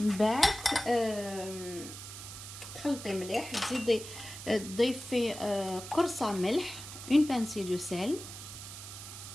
بعد تخلطي مليح، تزيدي تضيفي قرصه ملح، une pincée de sel.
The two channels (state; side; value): noise; right; hiss, 11 dB below the sound